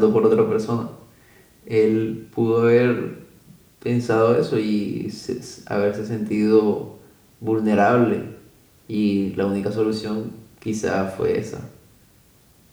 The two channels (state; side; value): identical; both; correlation 1.00